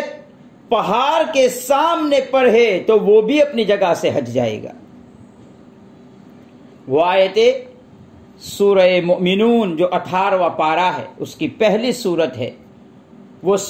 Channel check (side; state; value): both; identical; correlation 1.00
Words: پہاڑ کے سامنے پڑھے تو وہ بھی اپنی جگہ سے ہٹ جائے گا. وہ آیتیں سورہ مؤمنون جو 18واں پارہ ہے اس کی پہلی سورت ہے، وہ